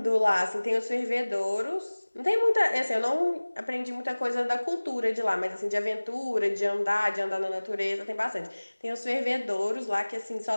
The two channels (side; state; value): both; inverted; correlation -1.00